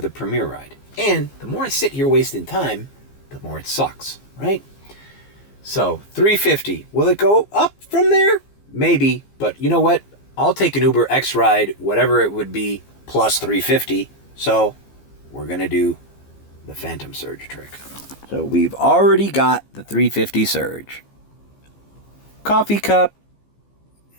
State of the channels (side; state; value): right; late; 15 ms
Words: a Premier ride. And the more I sit here wasting time, the more it sucks, right? So, $3.50. Will it go up from there? Maybe, but you know what? I'll take an Uber X ride, whatever it would be, plus $3.50. So, we're going to do the Phantom Surge trick. So, we've already got the $3.50 surge. Coffee cup.